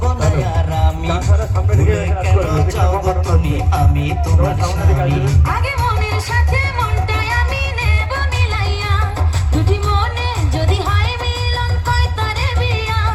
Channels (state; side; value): identical; both; correlation 1.00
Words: না আর আমি কেন যাও গো তুমি আমি তোমার স্বামী আগে মনের সাথে মনটাই আমি নেব মিলাইয়া দুটি মনে যদি হয় মিলন কয় তারে বিয়া